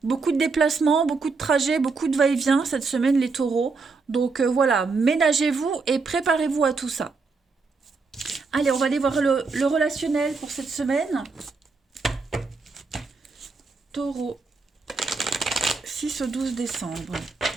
beaucoup de déplacements, beaucoup de trajets, beaucoup de va-et-vient cette semaine, les taureaux. Donc voilà, ménagez-vous et préparez-vous à tout ça. Allez, on va aller voir le relationnel pour cette semaine. Taureau, 6 au 12 décembre.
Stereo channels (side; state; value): left; quieter; 4.4 dB